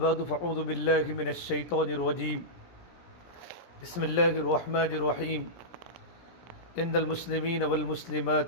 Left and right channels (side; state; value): right; late; 17 ms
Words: بعد فأعوذ بالله من الشيطان الرجيم بسم الله الرحمن الرحيم إن المسلمين